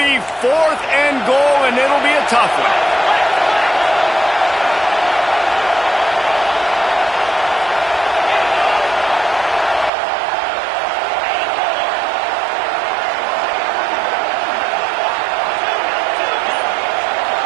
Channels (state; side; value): drops out; left; at 9.9 s